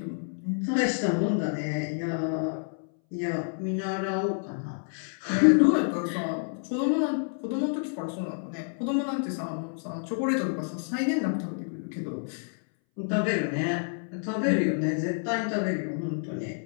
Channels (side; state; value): right; silent; 59 dB below the other